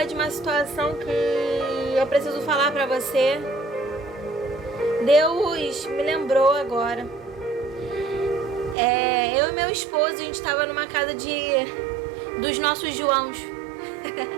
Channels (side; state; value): left; drops out; at 8.8 s